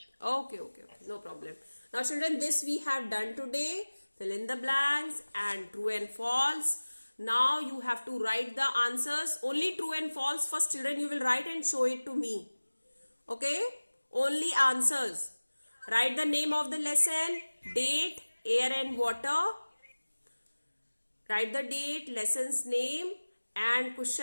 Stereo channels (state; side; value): inverted; both; correlation -1.00